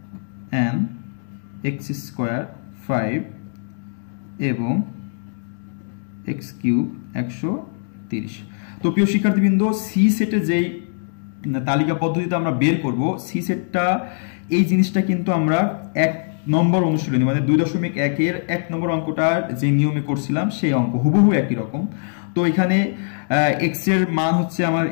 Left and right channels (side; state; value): right; silent; digital silence